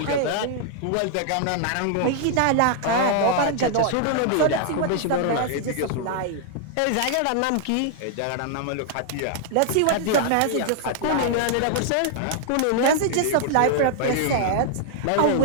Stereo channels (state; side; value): different; both; correlation 0.00